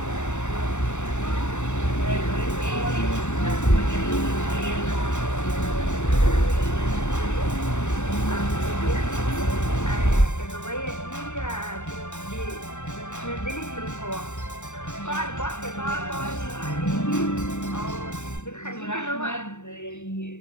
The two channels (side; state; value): right; late; 0.84 ms